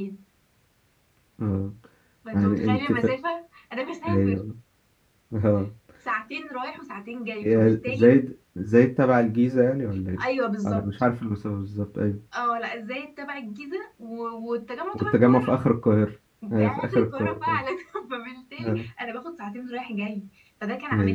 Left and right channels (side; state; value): both; identical; correlation 1.00